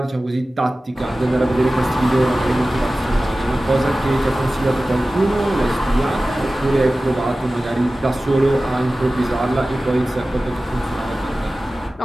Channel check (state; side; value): normal; both; correlation 0.96